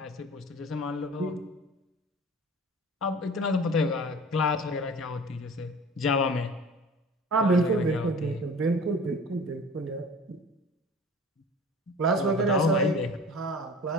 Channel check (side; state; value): both; normal; correlation 0.42